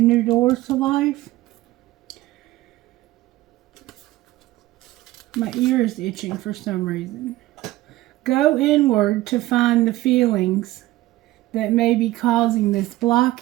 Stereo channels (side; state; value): left; quieter; 17.0 dB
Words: new doors to life. My ear is itching for some reason. Go inward to find the feelings that may be causing this